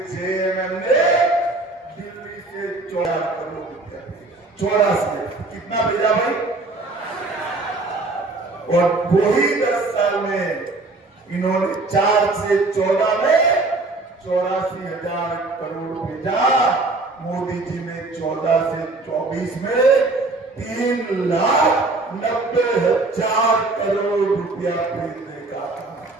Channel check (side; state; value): left; quieter; 3.2 dB